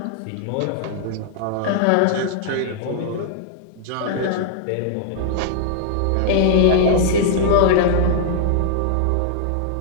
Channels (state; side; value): different; both; correlation -0.01